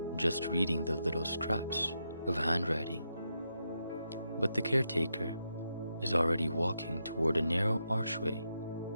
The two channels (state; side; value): inverted; both; correlation -0.84